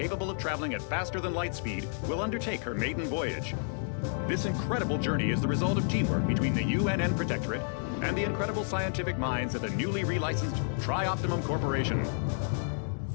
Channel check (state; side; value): silent; right; 57 dB below the other